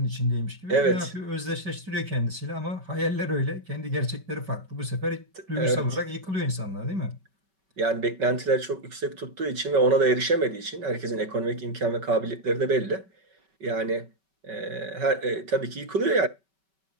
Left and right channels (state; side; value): late; left; 5.3 ms